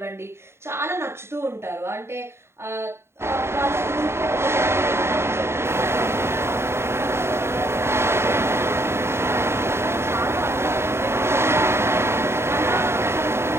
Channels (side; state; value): left; late; 0.12 ms